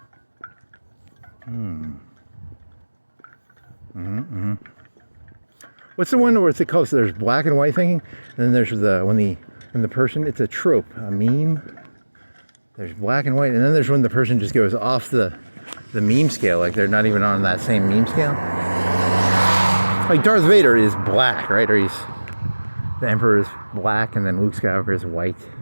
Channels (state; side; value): inverted; both; correlation -1.00